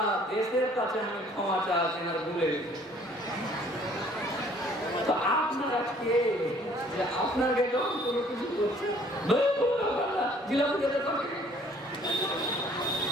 দেশের কাছে আমি ক্ষমা চাচ্ছি না, ভুলে গেছি। তো আপনারা কে যে আপনাকে যখন কোনো কিছু করছে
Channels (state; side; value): normal; both; correlation 0.58